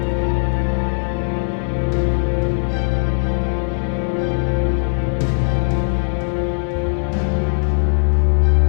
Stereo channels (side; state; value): right; silent; digital silence